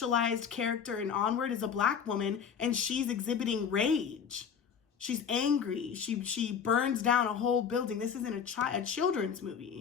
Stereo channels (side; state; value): right; quieter; 7.2 dB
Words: character in Onward is a Black woman, and she's exhibiting rage. She's angry. She burns down a whole building. This isn't a children's